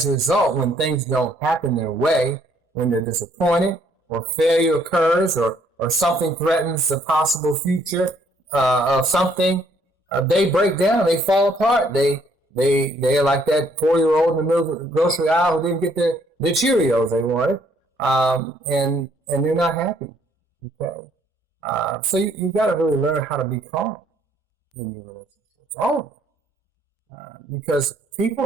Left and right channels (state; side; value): normal; both; correlation 0.66